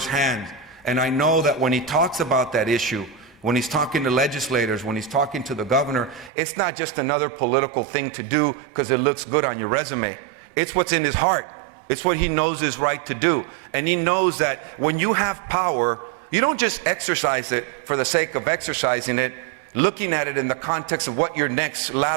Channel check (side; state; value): left; drops out; at 6.3 s